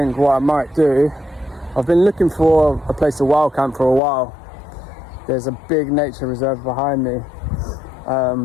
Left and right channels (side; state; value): right; drops out; at 4.0 s